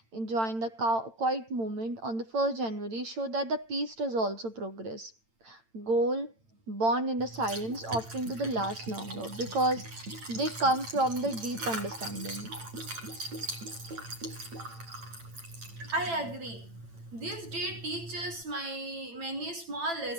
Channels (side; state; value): left; late; 8.9 ms